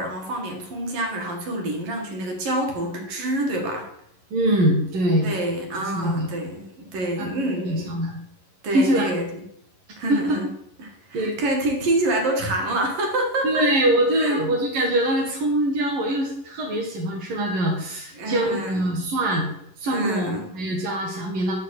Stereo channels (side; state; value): left; late; 11 ms